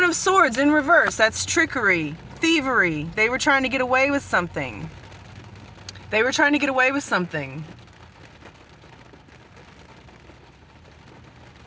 of Swords in reverse. That's trickery, thievery. They were trying to get away with something. They were trying to get away with something.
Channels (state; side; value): identical; both; correlation 1.00